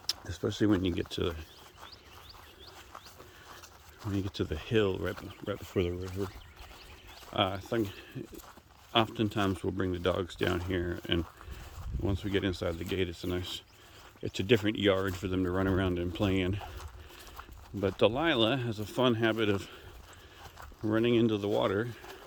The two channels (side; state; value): both; identical; correlation 1.00